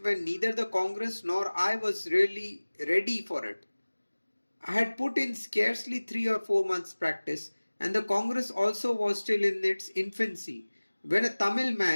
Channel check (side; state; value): both; inverted; correlation -1.00